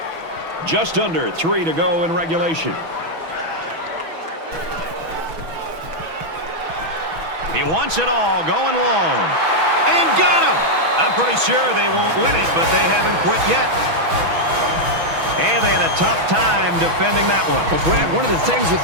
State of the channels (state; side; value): late; left; 6.1 ms